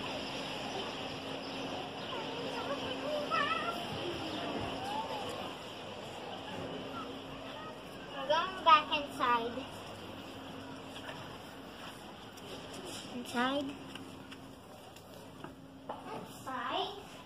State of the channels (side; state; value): both; identical; correlation 1.00